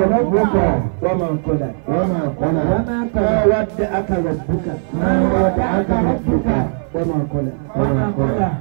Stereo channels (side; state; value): left; silent; 58 dB below the other